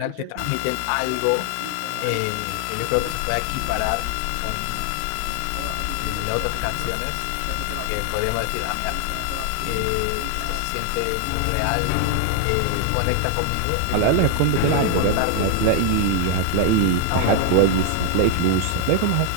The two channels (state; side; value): different; both; correlation 0.00